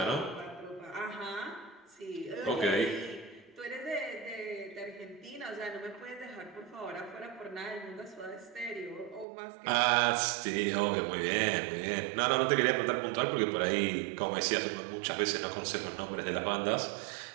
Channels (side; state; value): left; drops out; at 9.2 s